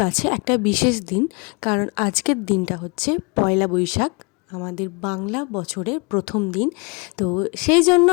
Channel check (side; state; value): right; quieter; 30.5 dB